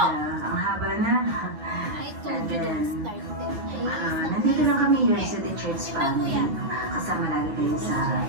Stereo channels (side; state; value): left; late; 10 ms